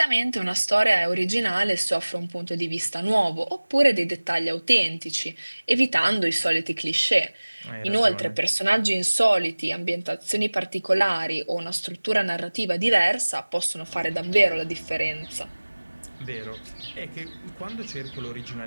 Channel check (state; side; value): inverted; both; correlation -1.00